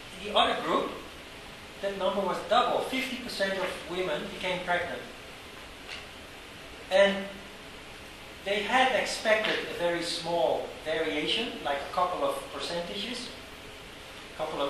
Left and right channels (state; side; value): identical; both; correlation 1.00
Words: The other group, that number was double. 50% of women became pregnant. And they had expected a very small variation, like a couple of percentages, couple